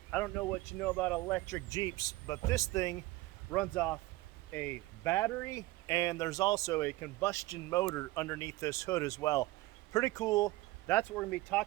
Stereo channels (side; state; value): left; quieter; 19.3 dB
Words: I don't know what you know about electric Jeeps, but this thing runs off a battery and there's also a combustion motor underneath this hood as well. Pretty cool. That's what we're going to be